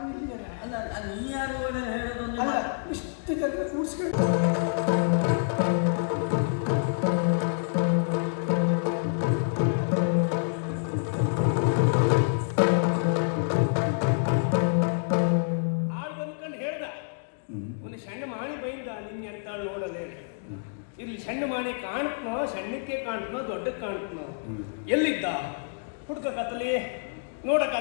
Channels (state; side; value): silent; right; digital silence